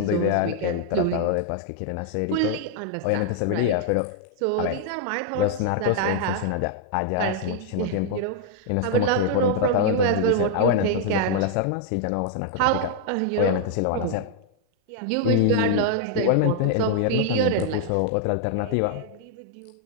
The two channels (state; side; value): different; both; correlation -0.01